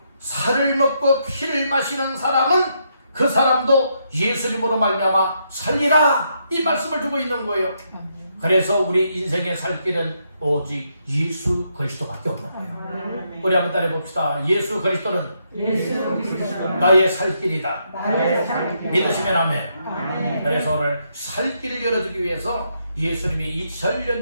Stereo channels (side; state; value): both; inverted; correlation -0.77